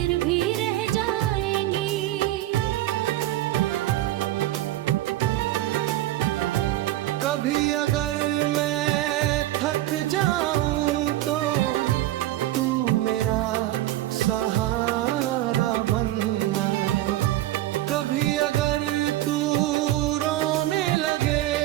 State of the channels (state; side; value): quieter; left; 15.2 dB